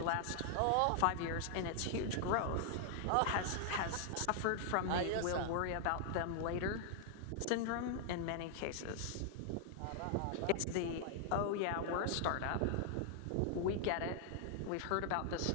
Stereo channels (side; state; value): both; different; correlation -0.01